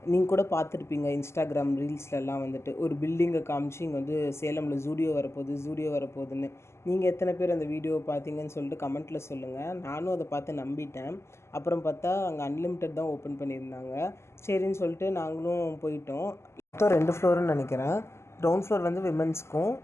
நீங்கள் கூட பார்த்துருப்பீங்க இன்ஸ்டாகிராம் ரீல்ஸ்லலாம் வந்துட்டு ஒரு பில்டிங்கை காமிச்சு இங்கே வந்து சேலமில் ஜூடியோ வரப்போகுது ஜூடியோ வரப்போகுதுன்னு. நீங்கள் எத்தனை பேர் அந்த வீடியோவை பார்த்தீங்கன்னு சொல்லிட்டு கமெண்ட்டில் சொல்லுங்கள். நானும் அதை பார்த்து நம்பிட்டேன். அப்புறம் பார்த்தா அங்கே அன்லிமிட்டெட் தான் ஓப்பன் பண்ணியிருந்தாங்க. சரின்னு சொல்லிட்டு நாங்களும் போயிட்டோம். மொத்தம் 2 ஃப்ளோருன்னு நினைக்கிறேன். கிரவுண்ட் ஃப்ளோர் வந்து விமென்ஸ்க்கும்,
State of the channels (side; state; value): right; late; 0.13 ms